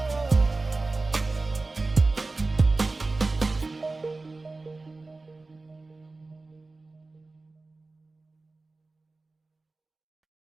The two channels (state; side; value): quieter; left; 3.4 dB